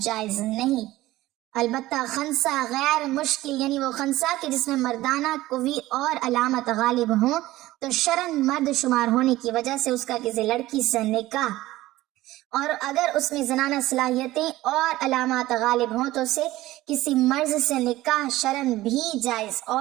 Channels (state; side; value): quieter; left; 16.8 dB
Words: نہیں۔ البتہ خنثی غیر مشکل، یعنی وہ خنثی کہ جس میں مردانہ قوی اور علامت غالب ہوں، تو شرعاً مرد شمار ہونے کی وجہ سے اس کا کسی لڑکی سے نکاح، اور اگر اس میں زنانہ صلاحیتیں اور علامات غالب ہوں تو اسے کسی مرد سے نکاح شرعاً بھی جائز